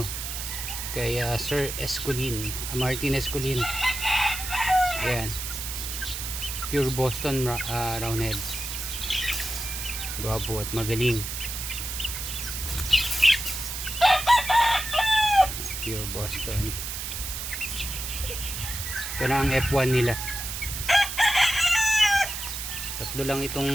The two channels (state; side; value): noise; right; hiss, 5 dB below the sound